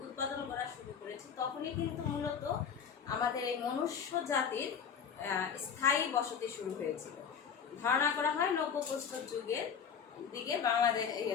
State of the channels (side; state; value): right; quieter; 7.1 dB